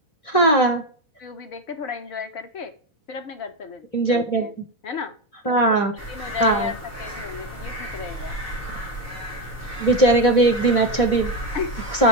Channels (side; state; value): right; late; 3.3 ms